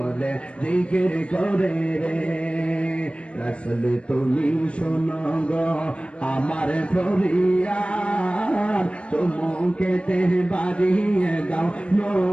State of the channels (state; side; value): late; right; 0.059 ms